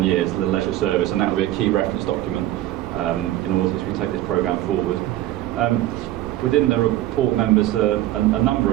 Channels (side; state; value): left; quieter; 14.4 dB